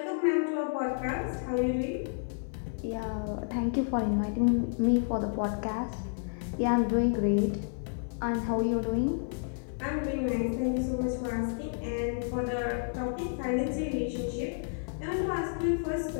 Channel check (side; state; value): right; silent; 57 dB below the other